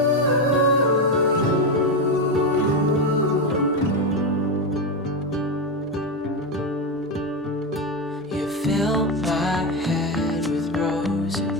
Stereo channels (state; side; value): normal; both; correlation 0.11